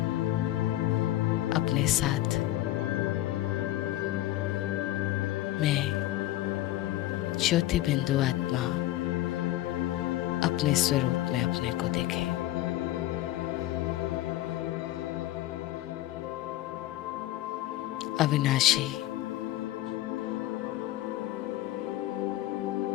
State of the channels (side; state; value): right; quieter; 15.2 dB